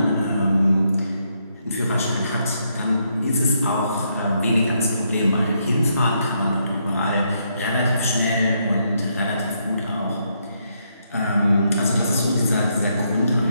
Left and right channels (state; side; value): inverted; both; correlation -0.77